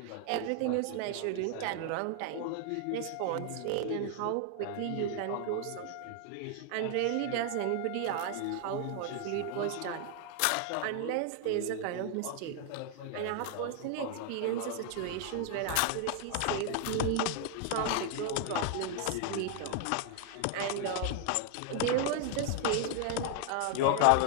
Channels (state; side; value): different; both; correlation 0.00